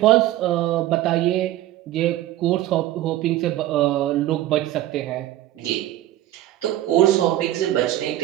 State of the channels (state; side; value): quieter; left; 14.2 dB